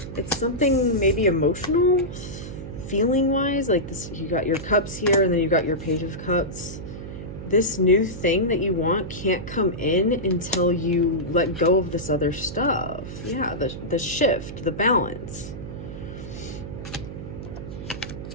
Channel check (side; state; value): right; noise; hum, 9 dB below the sound